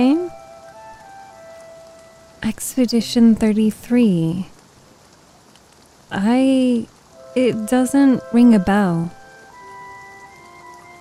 Expedition 33. It doesn't ring a bell.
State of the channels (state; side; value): identical; both; correlation 1.00